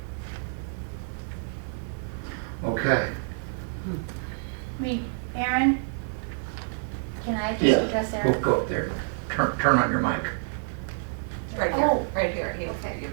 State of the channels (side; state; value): left; silent; digital silence